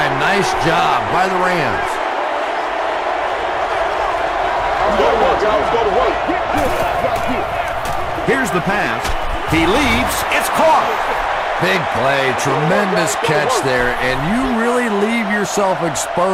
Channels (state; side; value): identical; both; correlation 1.00